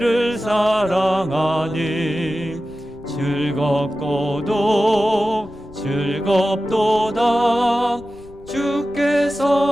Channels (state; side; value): noise; left; rumble, 22 dB below the sound